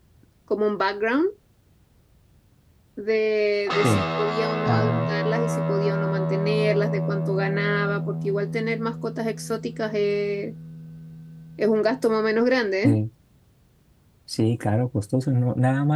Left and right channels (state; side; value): identical; both; correlation 1.00